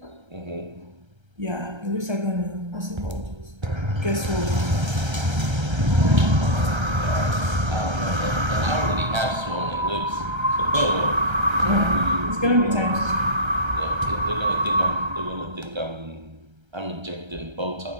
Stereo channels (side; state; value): left; late; 1.3 ms